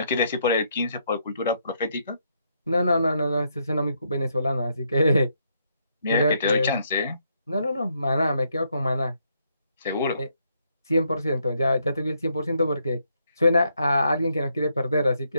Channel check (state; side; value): inverted; both; correlation -0.75